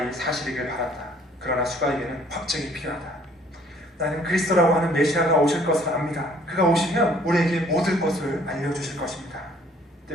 사실이길 바란다. 그러나 수가에게는 확증이 필요하다. 나는 그리스도라고 하는 메시아가 오실 것을 압니다. 그가 오시면 우리에게 모든 것을 알려주실 것입니다.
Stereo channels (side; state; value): both; normal; correlation 0.59